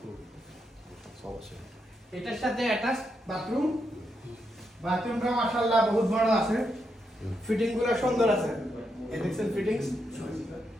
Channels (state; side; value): normal; both; correlation 0.82